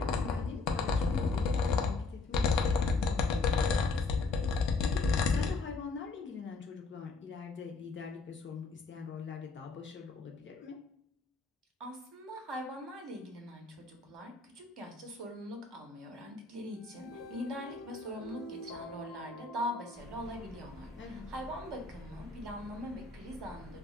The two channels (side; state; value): right; quieter; 3.9 dB